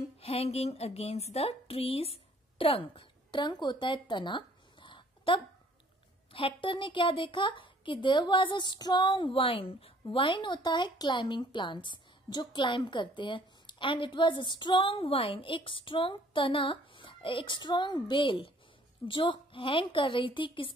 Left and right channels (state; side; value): normal; both; correlation 0.58